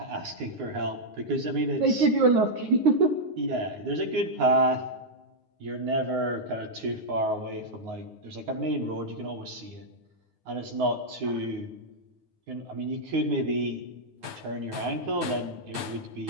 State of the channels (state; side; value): late; left; 9.5 ms